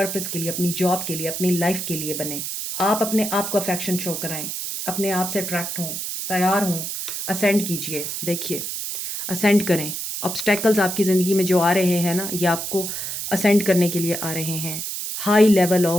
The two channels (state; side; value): noise; right; hiss, 5 dB below the sound